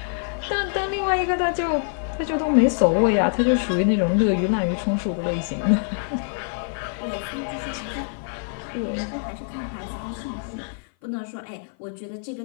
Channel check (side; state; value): right; silent; 56 dB below the other